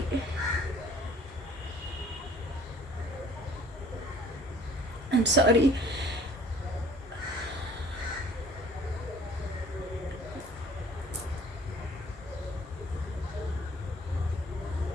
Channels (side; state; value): both; normal; correlation 0.52